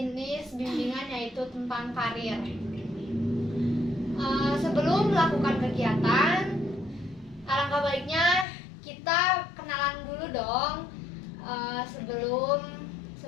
bimbingan yaitu tentang karir. Sebelum melakukan kegiatan, alangkah baiknya kita kenalan dulu dong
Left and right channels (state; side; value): drops out; right; at 8.5 s